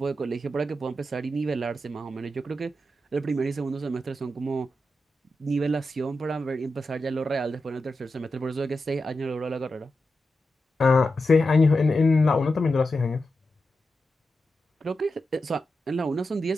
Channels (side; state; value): both; normal; correlation 0.89